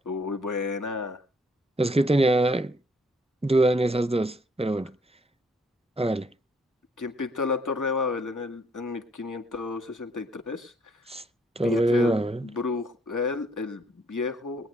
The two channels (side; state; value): both; normal; correlation 0.66